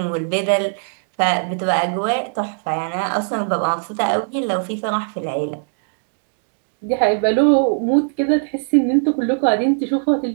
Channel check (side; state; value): left; silent; digital silence